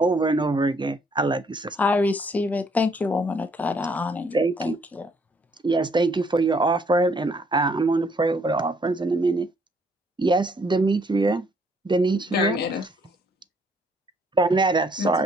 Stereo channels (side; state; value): both; normal; correlation 0.66